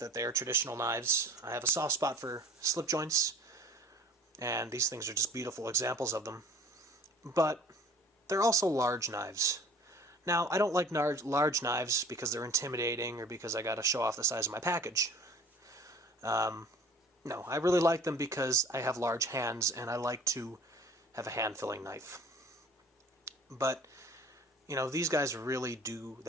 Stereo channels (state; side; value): normal; both; correlation 0.48